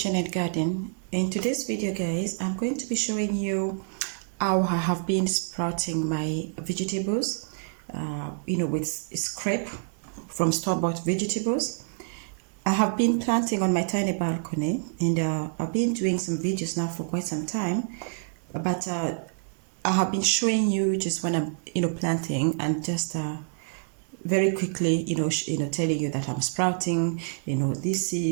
and Garden. In today's video guys, I'm going to be showing you how I have been sprouting my vegetables, with scrape from store-bought vegetables. I have been planting on my tiny balcony and I've been doing some videos now for quite some time, but I have been showing you just when I'm, planting and just very quickly, telling you that I'm sprouting, these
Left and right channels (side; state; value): left; silent; 60 dB below the other